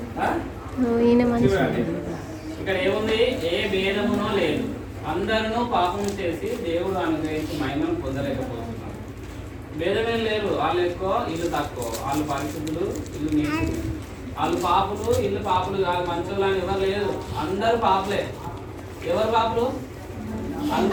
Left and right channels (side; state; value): both; identical; correlation 1.00